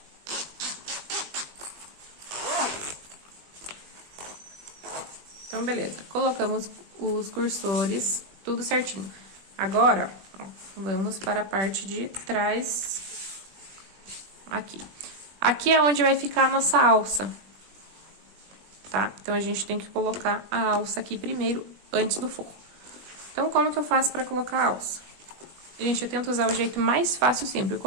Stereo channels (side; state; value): left; late; 21 ms